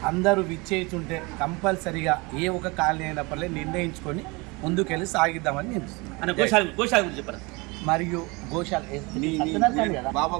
అందరూ విచ్చేస్తుంటే కంపల్సరిగా ఏ ఒక కాలనీ అయినప్పటికీ నిర్ణయించుకొని ముందుకెళ్ళి సాగిద్దామని నేను చెప్పారు. మరియు గోశాల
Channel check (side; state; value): left; quieter; 26.4 dB